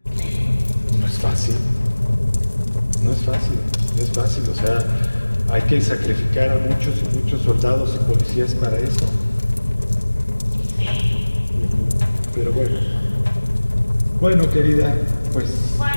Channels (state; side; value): inverted; both; correlation -1.00